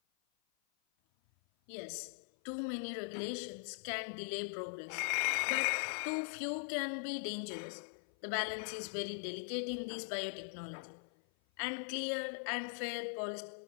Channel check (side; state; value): right; silent; 50 dB below the other